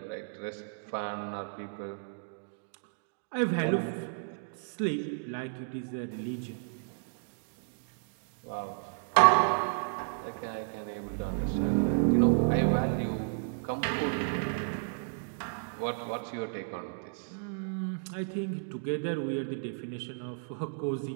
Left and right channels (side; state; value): left; silent; digital silence